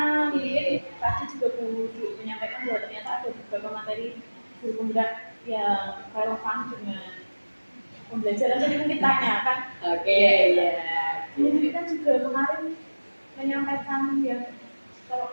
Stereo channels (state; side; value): inverted; both; correlation -1.00